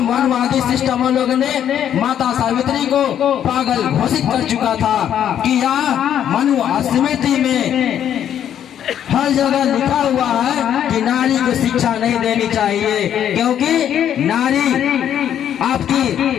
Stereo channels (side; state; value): right; quieter; 9.9 dB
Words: मनवादी सिस्टम लोगों ने माता सावित्री को पागल घोषित कर चुका था कि यह मनु स्मृति में हर जगह लिखा हुआ है कि नारी को शिक्षा नहीं देनी चाहिए, क्योंकि नारी आपकी